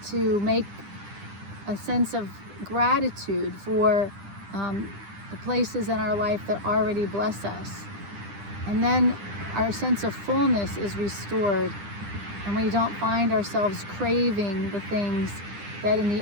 to make a sense of gratitude for the places in our life that already bless us. And then our sense of fullness is restored, and we don't find ourselves craving the things that in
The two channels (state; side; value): late; left; 9.9 ms